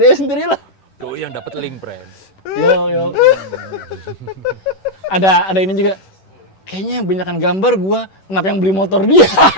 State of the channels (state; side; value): late; right; 11 ms